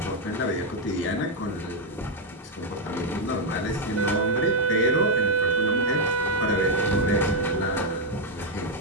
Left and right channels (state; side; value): normal; both; correlation 0.01